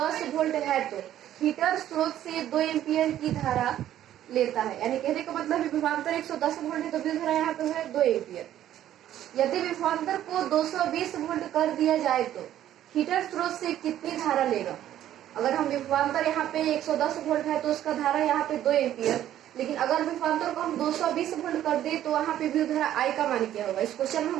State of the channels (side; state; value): left; quieter; 12.0 dB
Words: वोल्ट है तो हीटर स्रोत से 2 एम्पियर की धारा लेता है। यानी कहने का मतलब विभवांतर 110 वोल्ट है तो विद्युत धारा यहाँ पे है 2 एम्पियर। यदि विभवांतर को 220 वोल्ट कर दिया जाए तो हीटर स्रोत से कितनी धारा लेगा। अगर हम विभवांतर यहाँ पे 110 वोल्ट है तो उसका धारा यहाँ पे 2 एम्पियर, लेकिन अगर विभवांतर को हम 220 वोल्ट कर दे तो वहाँ पे विद्युत धारा आई का मान क्या होगा। इस क्वेश्चन में